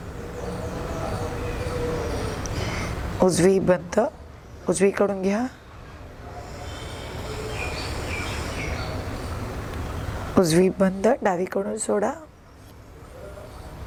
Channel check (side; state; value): both; identical; correlation 1.00